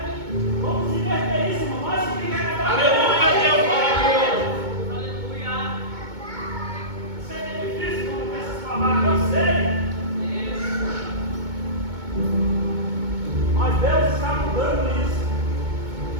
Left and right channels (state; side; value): late; left; 2.2 ms